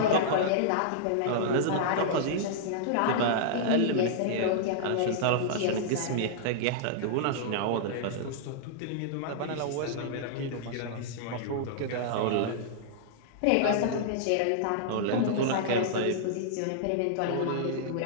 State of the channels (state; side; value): different; both; correlation -0.02